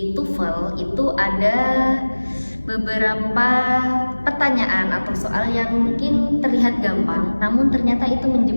TOEFL itu ada beberapa pertanyaan atau soal yang mungkin terlihat gampang, namun ternyata itu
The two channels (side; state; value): both; inverted; correlation -1.00